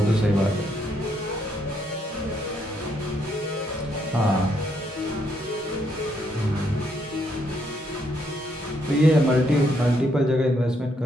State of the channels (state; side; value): normal; both; correlation 0.74